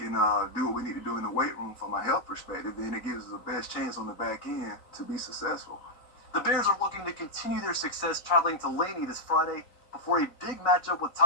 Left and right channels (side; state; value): right; late; 3.9 ms